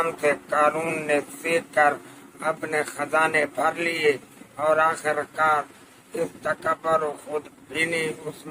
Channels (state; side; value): identical; both; correlation 1.00